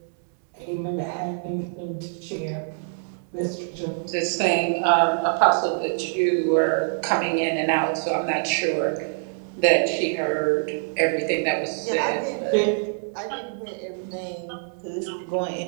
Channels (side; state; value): left; silent; digital silence